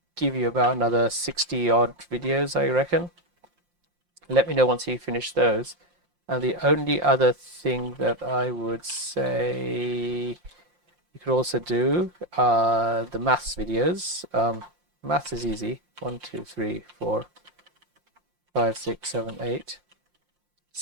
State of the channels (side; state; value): left; late; 5.7 ms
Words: give you about another 60 odd videos, I reckon. Let me know once you finish those. And the only other thing that I would say you could also do are the maths videos. Maths is easy. 1, 2, 3, 4, 5, 6, 7, 8.